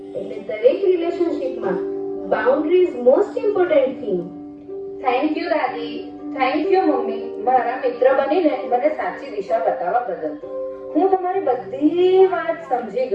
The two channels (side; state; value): both; identical; correlation 1.00